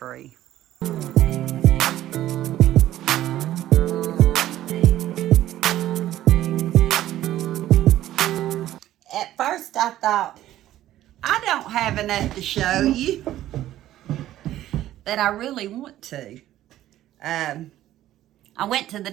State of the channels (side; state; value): left; quieter; 13.5 dB